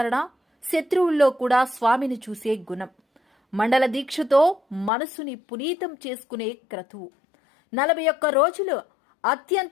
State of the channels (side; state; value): right; drops out; at 4.9 s